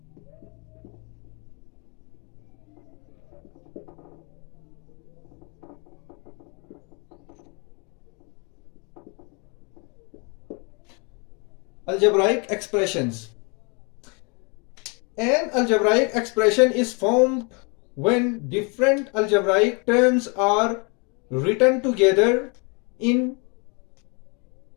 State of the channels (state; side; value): quieter; right; 32.8 dB